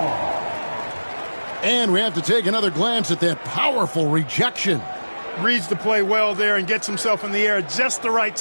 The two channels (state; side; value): inverted; both; correlation -1.00